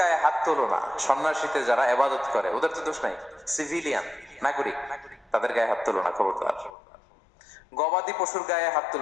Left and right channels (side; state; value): right; drops out; at 6.7 s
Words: হাত তোলো না। সন্ন্যাসীতে যারা ইবাদত করে ওদের তো দোষ নাই, সিভিলিয়ান নাগরিক, তাদের গায়ে হাত তোলো না, খবরদার। গবাদি পশুর গায়ে হাত